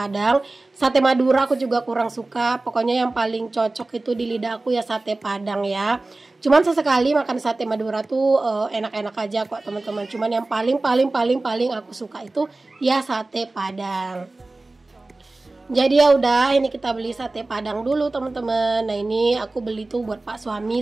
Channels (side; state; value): left; quieter; 3.1 dB